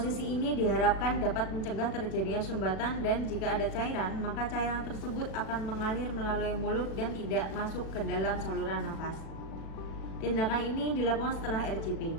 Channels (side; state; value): right; late; 36 ms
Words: ini diharapkan dapat mencegah terjadinya sumbatan dan jika ada cairan, maka cairan tersebut akan mengalir melalui mulut dan tidak masuk ke dalam saluran nafas. Tindakan ini dilakukan setelah RCP.